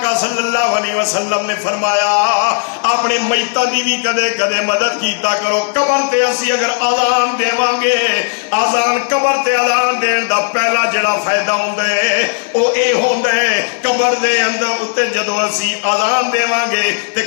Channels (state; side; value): silent; right; digital silence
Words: صلی اللہ علیہ وسلم نے فرمایا اپنے میتاں دی بھی کدے کدے مدد کیتا کرو. قبر تے اسی اگر اذان دیواں گے اذان قبر تے اذان دین دا پہلا جڑا فائدہ ہوندا ہے او اے ہوندا ہے قبر دے اندر اتے جدوں اسی اذان دیواں گے تے